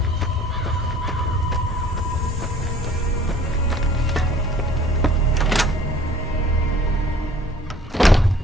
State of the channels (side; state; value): both; normal; correlation 0.52